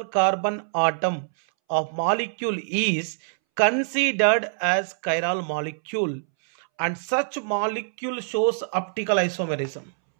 carbon atom of molecule is considered as chiral molecule and such molecule shows optical isomerism.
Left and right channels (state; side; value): silent; left; 62 dB below the other